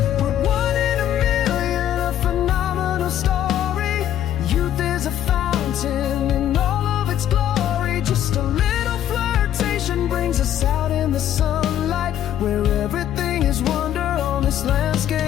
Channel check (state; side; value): quieter; right; 11.1 dB